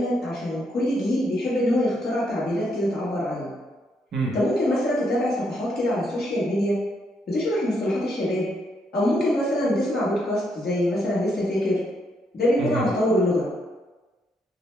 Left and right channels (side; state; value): both; normal; correlation 0.76